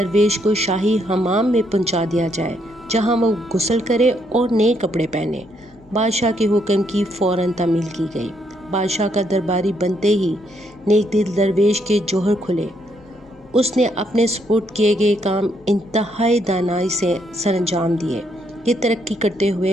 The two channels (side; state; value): both; normal; correlation 0.74